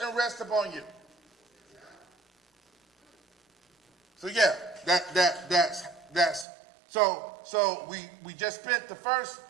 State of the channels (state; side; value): drops out; left; at 6.5 s